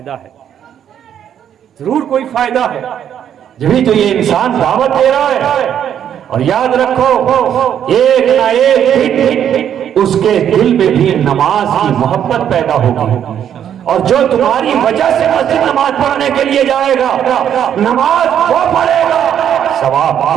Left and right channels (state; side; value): quieter; left; 9.5 dB